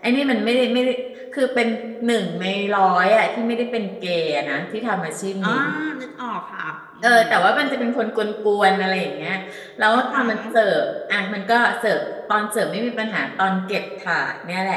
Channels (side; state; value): both; identical; correlation 1.00